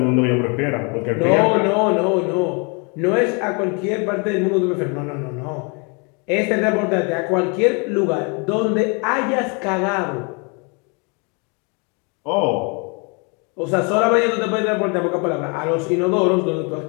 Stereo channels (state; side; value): quieter; right; 33.4 dB